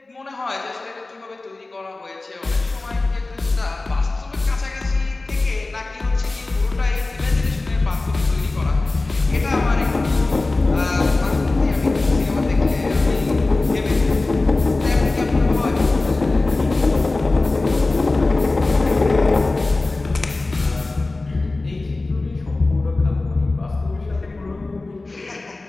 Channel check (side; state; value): right; quieter; 3.2 dB